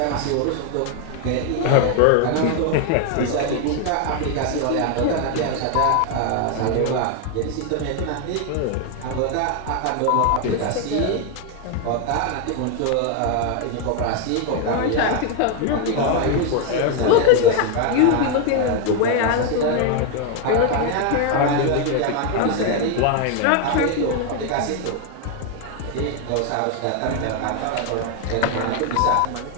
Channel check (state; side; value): different; both; correlation 0.01